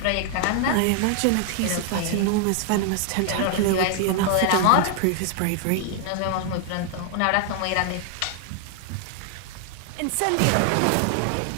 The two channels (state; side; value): different; both; correlation 0.00